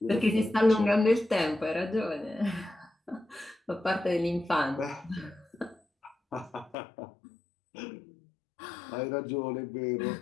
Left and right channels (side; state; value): right; drops out; at 6.8 s